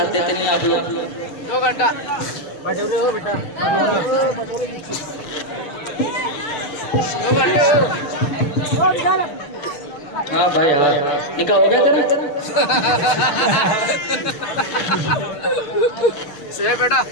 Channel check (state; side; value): late; right; 6.8 ms